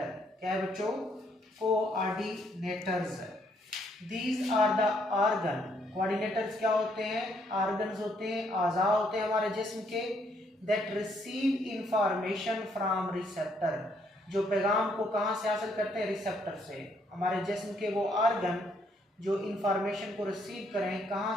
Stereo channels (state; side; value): normal; both; correlation 0.70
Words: क्या है बच्चों? Coordinators. These are the organ. Coordinators क्या होते हैं? ऑर्गन्स होते हैं, आज़ा होते हैं हमारे जिस्म के, that receive information from receptor. जो पैगाम को कहाँ से हासिल करते हैं? रिसेप्टर से। हमारे जिस्म के वो ऑर्गन जो इंफॉर्मेशन को रिसीव करें, कहाँ